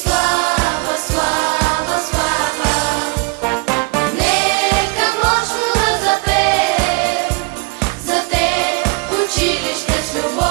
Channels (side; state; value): left; quieter; 28.4 dB